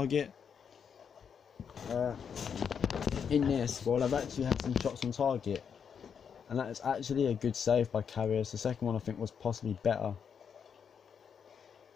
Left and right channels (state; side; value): quieter; right; 7.1 dB